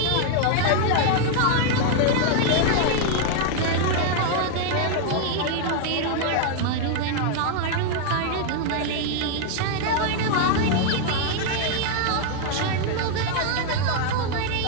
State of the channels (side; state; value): both; different; correlation 0.00